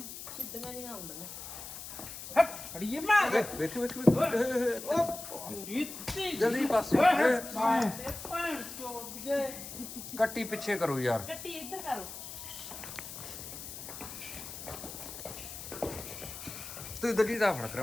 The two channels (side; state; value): left; noise; hiss, 10 dB below the sound